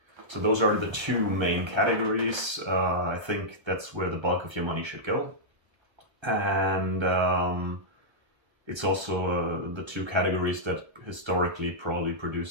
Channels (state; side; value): late; left; 1.3 ms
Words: So those are the two main categories. I think that's where the bulk of your money should go. And it's also the two categories that historically probably